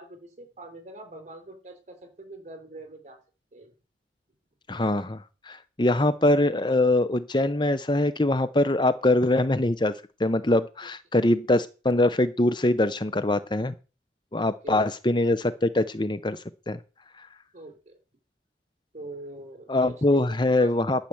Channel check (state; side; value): normal; both; correlation 0.64